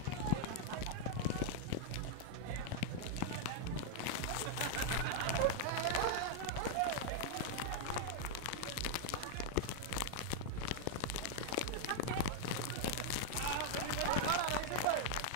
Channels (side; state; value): both; different; correlation 0.00